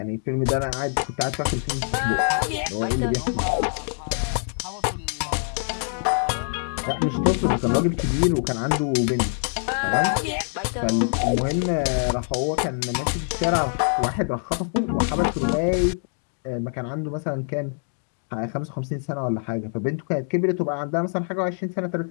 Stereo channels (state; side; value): silent; right; digital silence